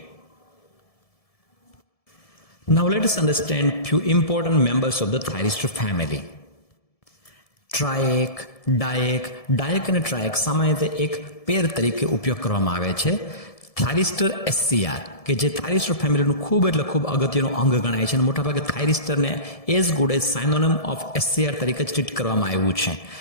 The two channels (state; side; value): late; right; 1.7 ms